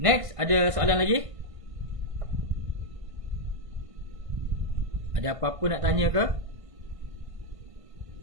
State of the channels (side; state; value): left; late; 1.5 ms